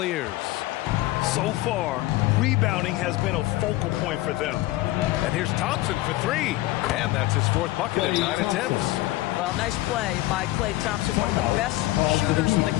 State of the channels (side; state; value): right; quieter; 17.5 dB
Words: So far, rebounding has been a focal point for them. And here's Thompson for three. And that's his fourth bucket in 9 attempts. Well, nice play by Klay Thompson, one of the best shooters in the